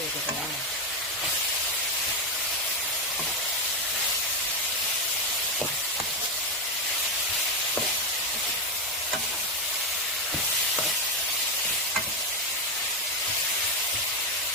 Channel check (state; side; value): normal; both; correlation 0.08